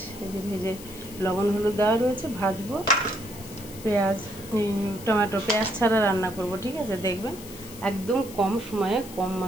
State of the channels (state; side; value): noise; left; hiss, 16 dB below the sound